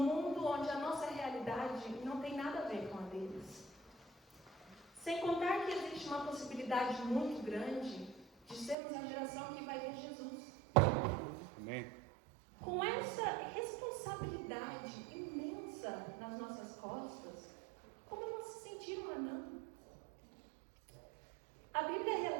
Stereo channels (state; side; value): drops out; left; at 8.8 s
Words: onde a nossa realidade não tem nada a ver com a deles. Sem contar que existe uma possibilidade muito grande de sermos a geração que vai ver Jesus. Amém. Com essa responsabilidade imensa nas nossas costas, como não se sentir um anão? A Bíblia